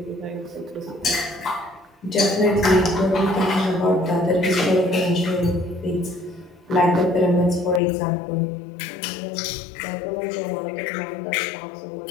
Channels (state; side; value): drops out; right; at 7.8 s